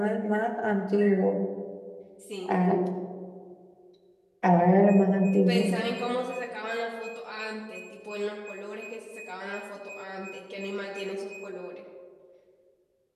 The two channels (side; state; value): both; identical; correlation 1.00